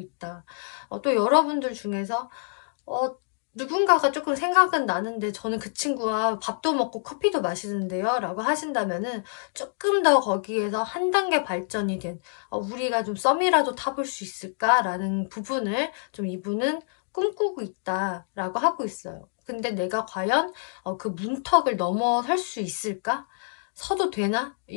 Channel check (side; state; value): right; silent; digital silence